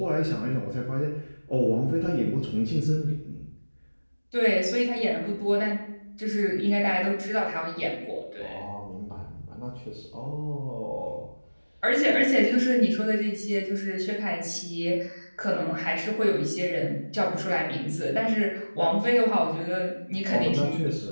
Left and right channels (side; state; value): both; inverted; correlation -1.00